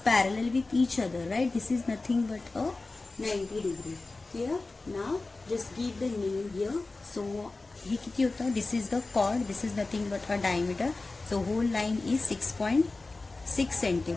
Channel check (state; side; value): quieter; right; 3.4 dB